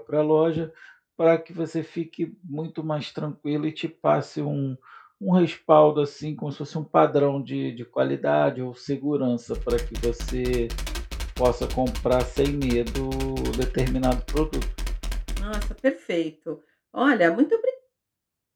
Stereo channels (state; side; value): identical; both; correlation 1.00